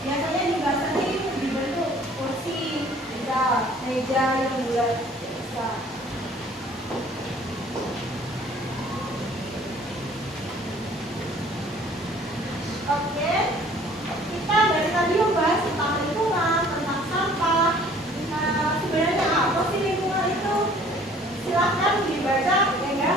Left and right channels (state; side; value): normal; both; correlation 0.54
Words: Biasanya di basah ini dibentuk kursi, meja yang bulat bisa. Oke, kita dari tadi membahas tentang lingkungan, tentang sampah. Sebenarnya apa sih lingkungan itu? Silahkan dibaca, ya